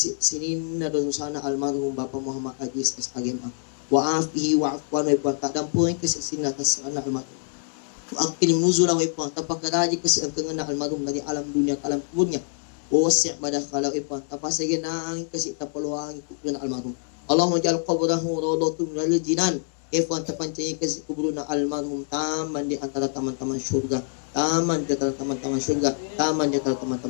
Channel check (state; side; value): silent; right; digital silence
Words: na dosana almarhum Bapak Muhammad Aziz SAGMA. Wa afihi wa afwan ibuang, tak dampui ke sini atas anak almarhum. Wa aqilim nuzulah ibuang, tapakaraji ke sini tengah almarhum dari alam dunia ke alam kuburnya. Wasi' madakhalau ipan tapasage nang kasi tapaluang kuburan almarhum. Allahumma ja'al qabrahu rawdatun minal jinan. Ipan tapancay kasi kuburan almarhum taman di antara taman-taman surga. Taman di antara taman-taman surga. Taman di antara